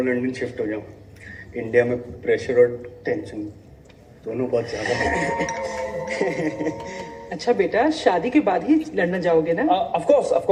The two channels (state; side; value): identical; both; correlation 1.00